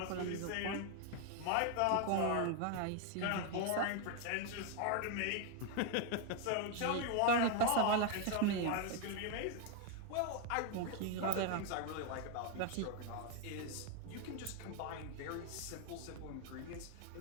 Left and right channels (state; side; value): different; both; correlation 0.01